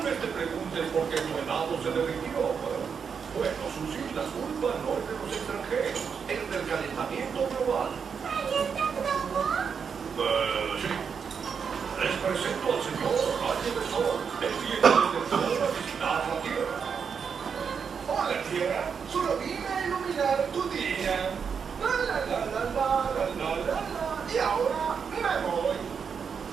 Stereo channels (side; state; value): left; quieter; 6.4 dB